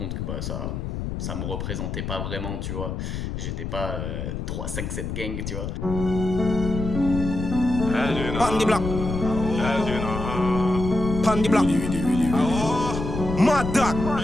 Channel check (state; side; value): noise; left; rumble, 4 dB below the sound